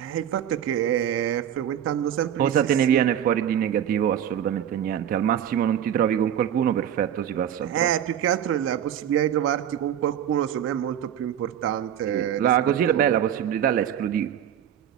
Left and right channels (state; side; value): quieter; left; 9.9 dB